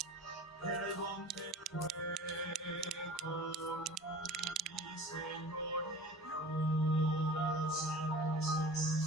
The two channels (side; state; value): both; normal; correlation 0.41